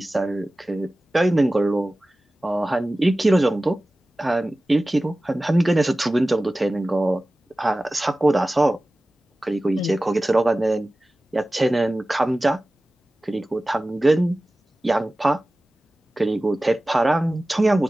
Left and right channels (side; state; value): both; normal; correlation 0.97